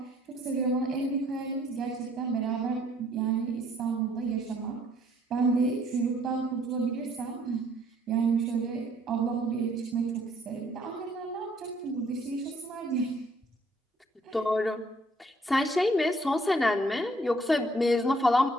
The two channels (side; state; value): both; normal; correlation 0.63